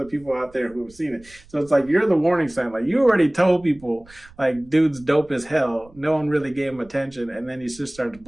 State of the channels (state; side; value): noise; right; rumble, 25 dB below the sound